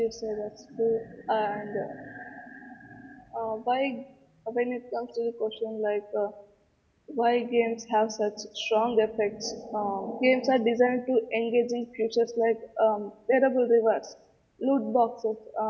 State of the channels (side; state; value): both; identical; correlation 1.00